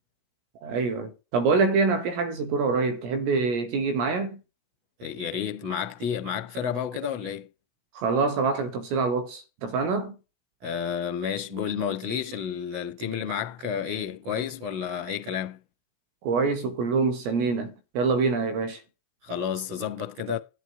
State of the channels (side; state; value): left; late; 16 ms